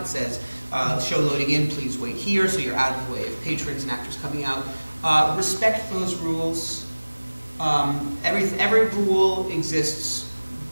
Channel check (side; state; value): both; inverted; correlation -1.00